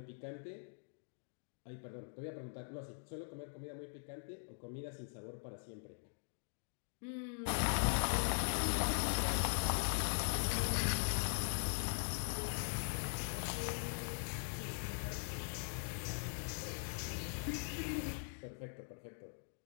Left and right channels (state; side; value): silent; right; digital silence